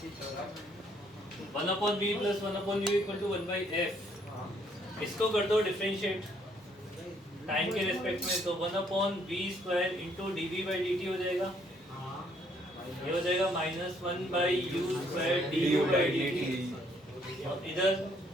1/v plus 1/u equal to 1/f। इसको कर दो डिफरेंशिएट टाइम के रेस्पेक्ट में, तो 1/v स्क्वायर इंटू dv/dt हो जाएगा। ये हो जाएगा -1/u स्क्वायर du/dt। और इधर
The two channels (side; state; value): both; normal; correlation 0.67